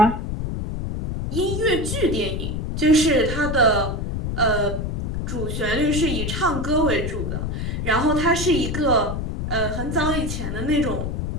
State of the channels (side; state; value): left; noise; rumble, 3 dB below the sound